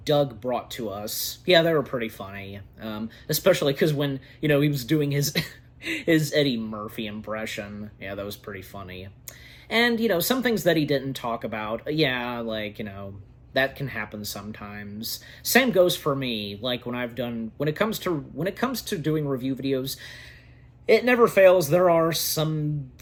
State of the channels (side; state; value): both; identical; correlation 1.00